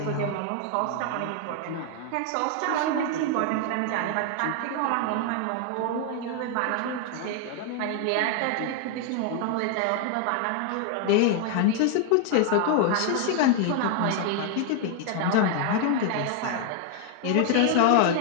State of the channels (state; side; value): different; both; correlation 0.00